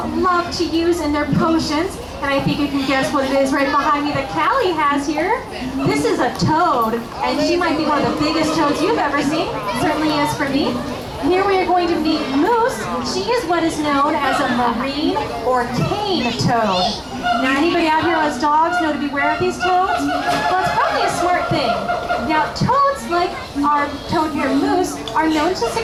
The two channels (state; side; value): identical; both; correlation 1.00